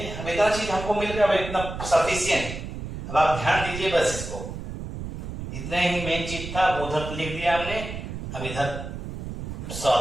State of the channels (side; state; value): right; noise; rumble, 8 dB below the sound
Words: हम इतना चीज हमको मिल गया, इतना सफिशियंट। अब आप ध्यान दीजिए बस इसको, इतना ही मेन चीज था, उधर लिख दिया हमने। अब इधर